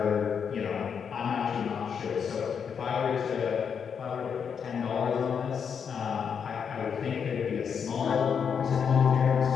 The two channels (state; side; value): quieter; right; 6.9 dB